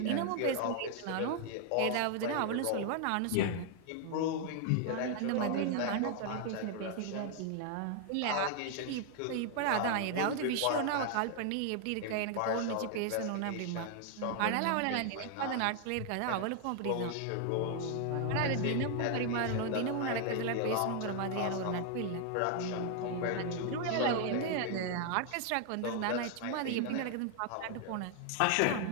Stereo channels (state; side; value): different; both; correlation 0.00